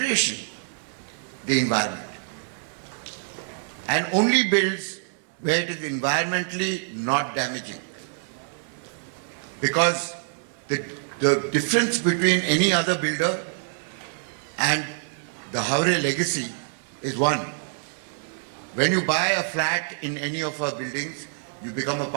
the environment and only builds where it is environmentally not damaging. Because the difference between any other builder and the Havre legacy is one. When you buy a flat in any of our buildings, you become a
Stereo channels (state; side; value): silent; left; digital silence